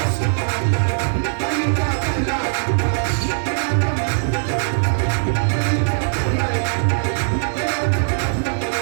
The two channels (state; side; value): silent; left; digital silence